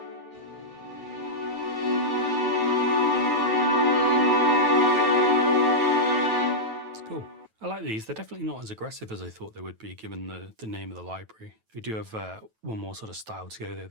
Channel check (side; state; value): left; late; 9.2 ms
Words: It's cool. I like these. They're definitely not as aggressive as I thought they would be given the name of the library. We do have one more sort of style to go there,